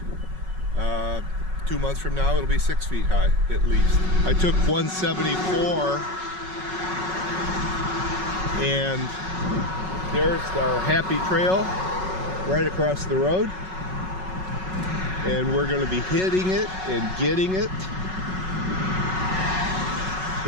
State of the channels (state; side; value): late; left; 5.4 ms